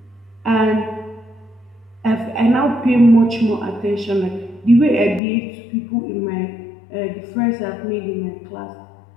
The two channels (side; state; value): right; drops out; at 5.2 s